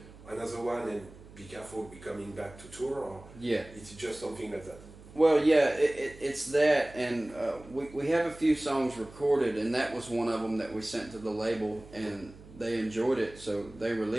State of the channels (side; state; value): right; noise; hum, 20 dB below the sound